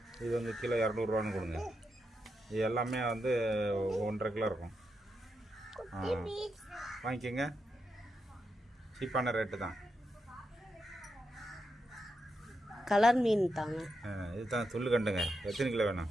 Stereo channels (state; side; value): normal; both; correlation 0.84